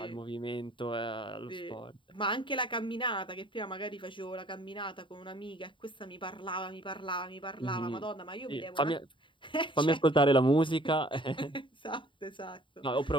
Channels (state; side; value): late; right; 0.24 ms